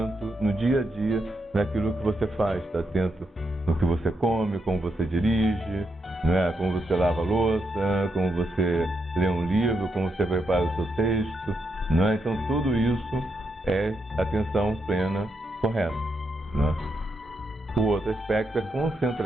no dia a dia naquilo que você faz, está atento no que você come, como você dirige, né? Como você lava a louça, como você lê um livro, como você prepara o seu texto, né? Então tudo isso é atenção plena correta, né? O outro aspecto é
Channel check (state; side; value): normal; both; correlation 0.82